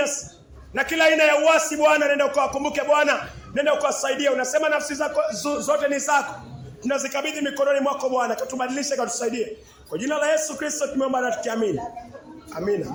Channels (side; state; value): both; identical; correlation 1.00